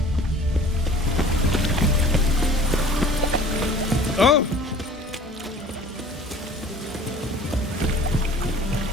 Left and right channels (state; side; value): normal; both; correlation 0.48